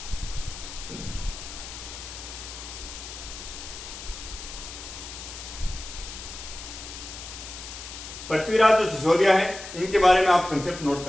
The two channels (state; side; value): noise; left; hiss, 11 dB below the sound